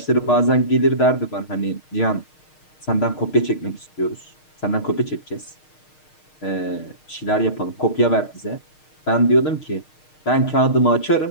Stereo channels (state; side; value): late; right; 6.5 ms